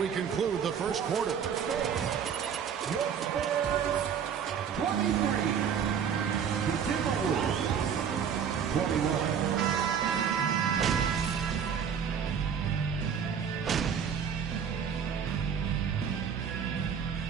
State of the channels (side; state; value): left; quieter; 7.6 dB